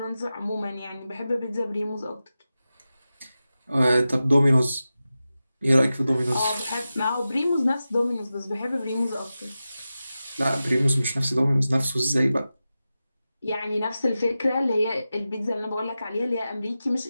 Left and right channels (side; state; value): both; inverted; correlation -0.93